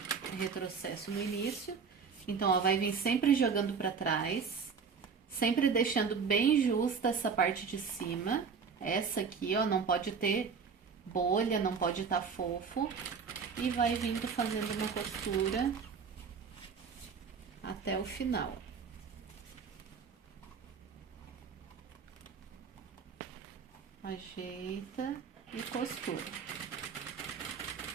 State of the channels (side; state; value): left; quieter; 5.9 dB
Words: Retrocesso no início. Então, ó, vai vir sempre jogando pra trás. Sempre deixando bem justa essa parte de cima. Essa aqui, ó, não pode ter bolha, não pode estar fofo. E vai vindo fazendo uma costura até o final. Ajeita e costura.